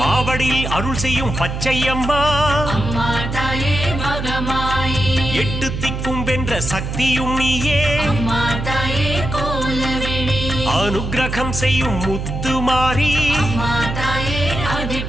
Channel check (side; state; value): right; noise; hum, 4 dB below the sound